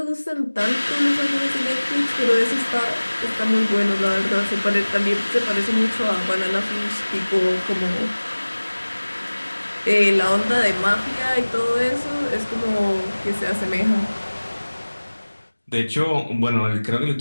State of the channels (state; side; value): inverted; both; correlation -1.00